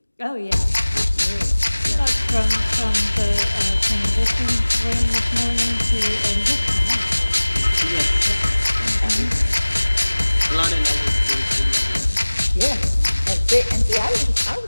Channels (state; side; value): inverted; both; correlation -1.00